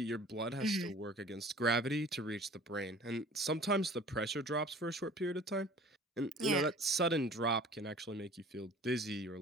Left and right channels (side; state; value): both; normal; correlation 0.47